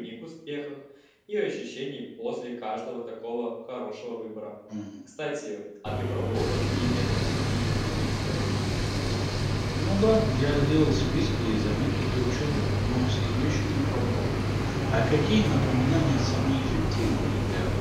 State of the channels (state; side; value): identical; both; correlation 1.00